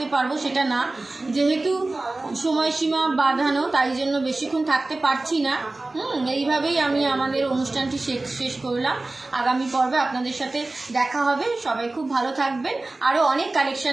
পারবো সেটা না, যেহেতু সময়সীমা বাঁধানো তাই জন্য বেশিক্ষণ থাকতে পারছি না। এইভাবেই আমি আমাদের অনুষ্ঠানটি শেষ করলাম। আগামী পর্বে আপনাদের সাথে দেখা হবে। সবাই খুব ভালো থাকবেন, আরও অনেক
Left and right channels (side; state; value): left; quieter; 3.0 dB